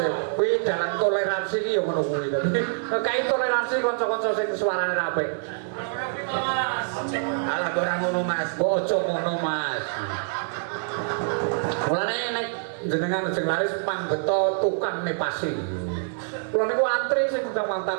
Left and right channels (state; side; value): silent; left; 61 dB below the other